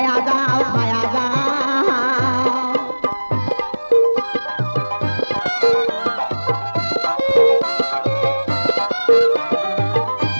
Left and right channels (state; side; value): inverted; both; correlation -1.00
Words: যাও খায়া যাও।